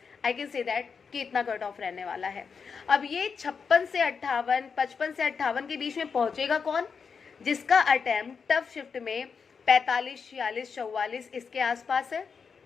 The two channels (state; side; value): quieter; right; 5.8 dB